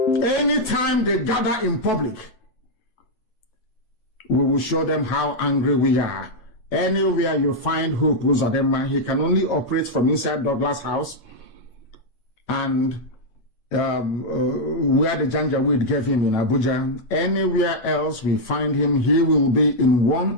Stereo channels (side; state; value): right; late; 8.2 ms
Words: we will show them how angry we are. Anywhere you find Hope Uzodinma, he can only operate from inside Douglas House and where the Janjaweed gave him in Abuja. Anywhere else we find him, he will be in one